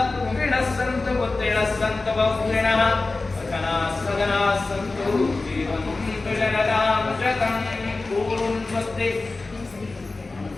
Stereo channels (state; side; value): quieter; right; 3.5 dB